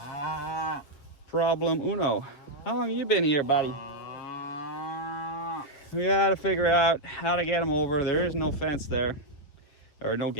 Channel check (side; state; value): right; late; 7.1 ms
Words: problem uno. How long have you been here, buddy? We got to figure out how to get them over. There is no fence there, or no